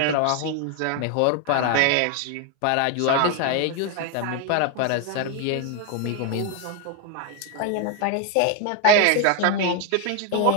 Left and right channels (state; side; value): different; both; correlation 0.01